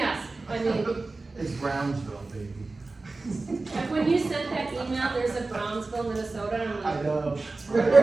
I mean, it's Brownsville, baby. like when you sent that email, there's a Brownsville, Minnesota, and I'm I like, know. really?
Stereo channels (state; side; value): quieter; left; 3.5 dB